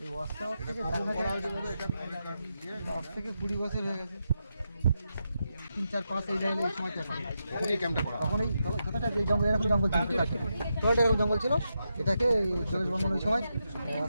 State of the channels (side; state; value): both; inverted; correlation -0.86